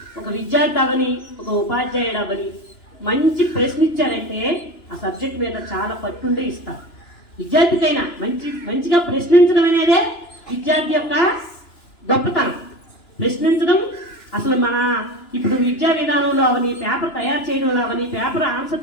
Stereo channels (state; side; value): late; right; 2.9 ms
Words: ఒక విద్యార్థి అవని ఒక ఉపాధ్యాయుడు అవని మంచి ప్రశ్న ఇచ్చారంటే ఆ సబ్జెక్ట్ మీద చాలా పట్టుండే ఇస్తారు. విద్యార్థికైనా మంచిగా ప్రశ్నించడం అనేదే విద్యార్థి యొక్క గొప్పతనం. ప్రశ్నించడం అసలు మన ఇప్పుడు విద్యా విధానంలో అవని, పేపర్ తయారు చేయడంలో అవని, పేపర్